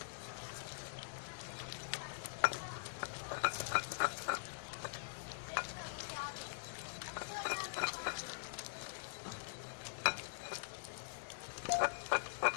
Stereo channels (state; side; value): silent; right; digital silence